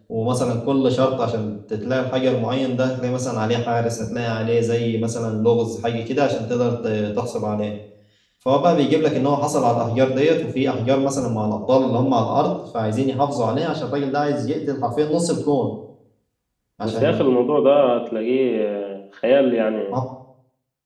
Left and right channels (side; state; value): both; identical; correlation 1.00